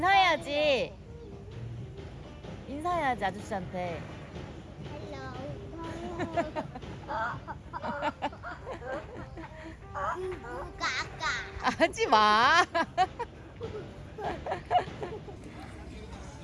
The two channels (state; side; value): identical; both; correlation 1.00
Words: 인사해야지 아저씨한테. 까까. 하지 마.